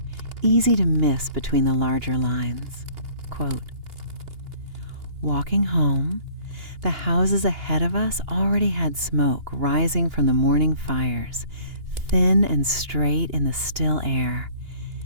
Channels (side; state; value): left; late; 2.9 ms